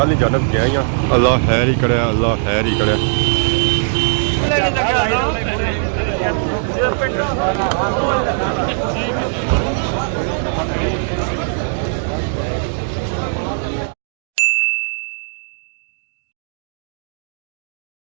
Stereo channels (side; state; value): left; silent; digital silence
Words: ਦੀ ਜਾਨਬ ਗਈਆਂ। ਅੱਲਾਹ ਖੈਰ ਹੀ ਕਰਿਆ, ਅੱਲਾਹ ਖੈਰ ਹੀ ਕਰਿਆ।